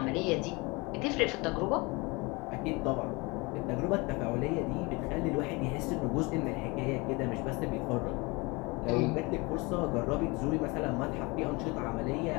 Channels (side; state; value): right; quieter; 26.2 dB